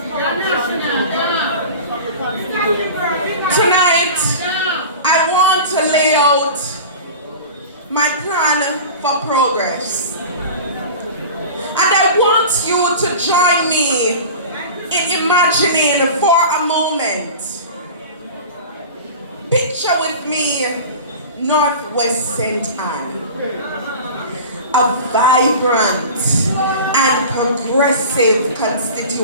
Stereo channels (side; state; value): both; inverted; correlation -0.35